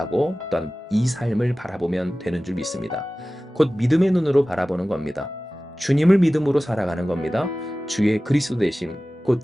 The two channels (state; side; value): normal; both; correlation 0.96